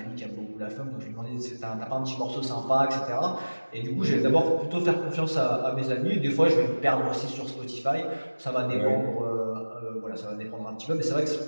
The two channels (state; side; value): inverted; both; correlation -1.00